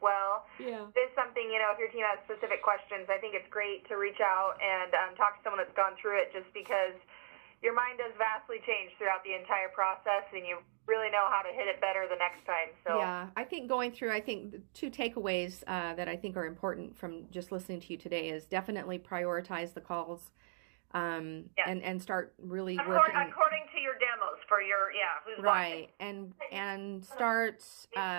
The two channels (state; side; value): silent; left; digital silence